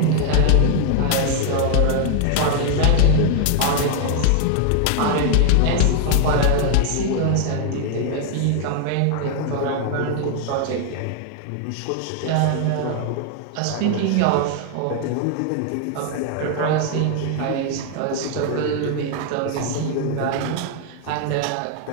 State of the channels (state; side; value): different; both; correlation 0.00